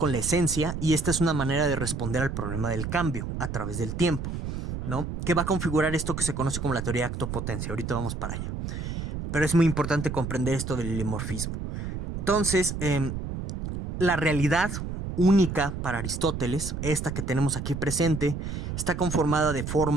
la esencia y esta es una manera de responder al problema del cambio a través del tiempo, ¿no? Que va a configurar esto que se conoce como la teoría de acto-potencia. Ahorita vamos para allá. Pero es muy importante comprender esto del ilemorfismo. Entonces, la realidad única para Aristóteles, esta que tenemos aquí presente, está conformada de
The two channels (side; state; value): right; noise; rumble, 5 dB below the sound